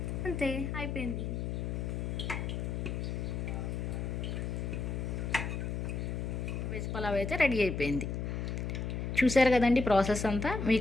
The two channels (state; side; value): noise; left; hum, 2 dB below the sound